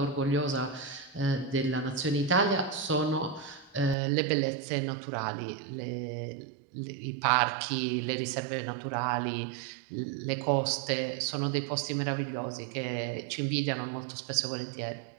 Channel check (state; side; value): drops out; left; at 4.0 s